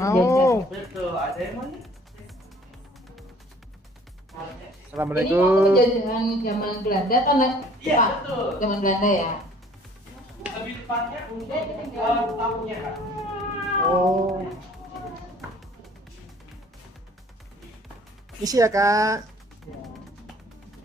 Betul, ada yang mau lihat? Ini Assalamualaikum. penjajahan zaman Belanda kan? Iya, Pak? betul. Zaman Belanda ya. Lebih tepatnya untuk tamunya, Kak. Oh. Isi ya kak.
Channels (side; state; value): both; normal; correlation 0.54